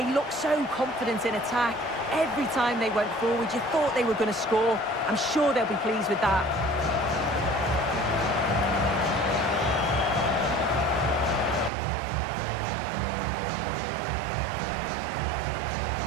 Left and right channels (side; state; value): left; drops out; at 11.7 s